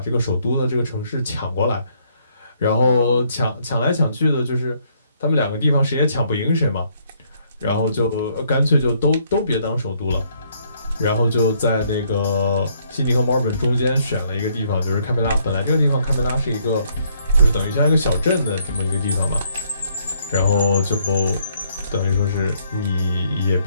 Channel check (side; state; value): both; inverted; correlation -0.69